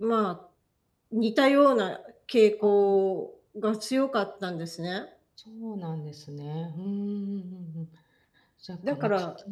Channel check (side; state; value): both; identical; correlation 1.00